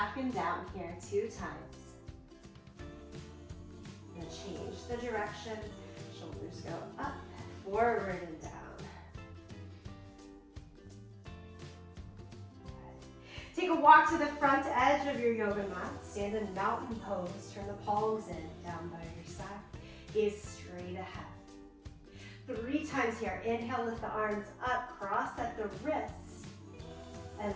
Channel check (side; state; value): both; identical; correlation 1.00